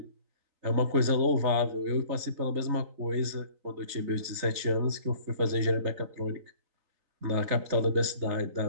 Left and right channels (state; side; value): late; left; 3.9 ms